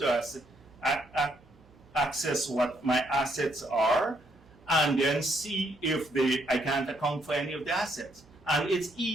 access what my assets are, and then see if I can't account for any of the assets. And it's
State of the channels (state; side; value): noise; right; hum, 28 dB below the sound